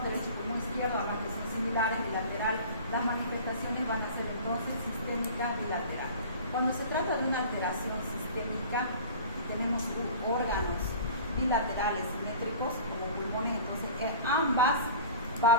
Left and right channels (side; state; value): both; inverted; correlation -0.40